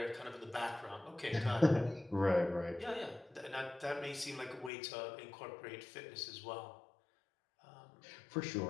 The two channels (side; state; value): right; drops out; at 4.7 s